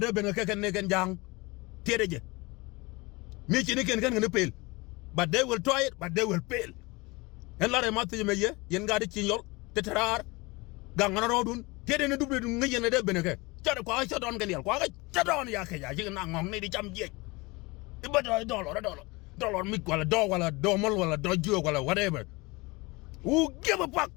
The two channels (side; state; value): right; quieter; 24.7 dB